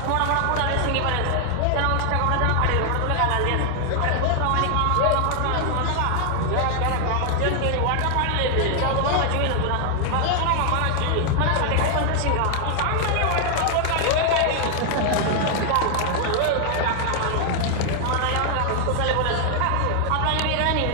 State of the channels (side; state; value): both; different; correlation 0.00